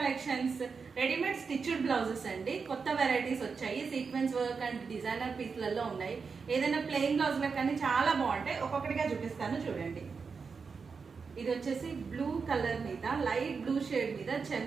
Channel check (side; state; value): left; quieter; 5.2 dB